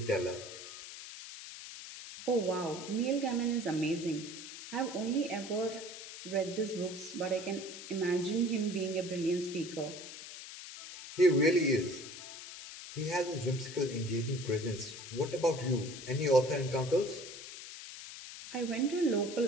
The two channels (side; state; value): left; noise; hiss, 12 dB below the sound